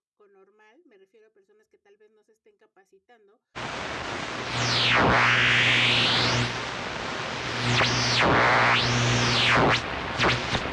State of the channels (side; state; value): both; identical; correlation 1.00